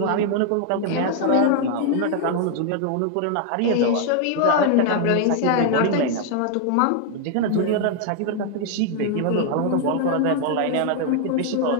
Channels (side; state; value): both; different; correlation 0.00